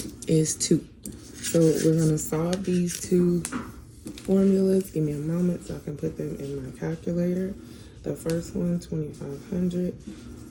is 2. So we're going to solve these two formulas. Give me a moment so I can put them in my calculator. The first one, 2,500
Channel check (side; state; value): both; identical; correlation 1.00